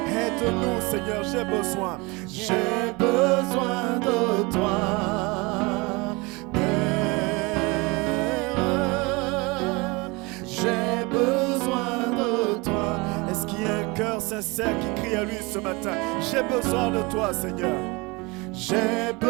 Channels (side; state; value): left; quieter; 26.0 dB